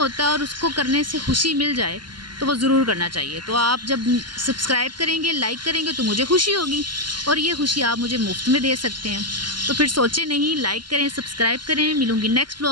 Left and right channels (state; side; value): late; left; 0.71 ms